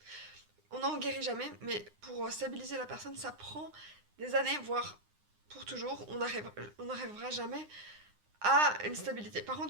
On n'en guérit jamais, mais pour stabiliser la personne, ça prend des années, voire pour toujours. On n'arrivera jamais à une stabilité. Par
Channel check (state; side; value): late; left; 9.8 ms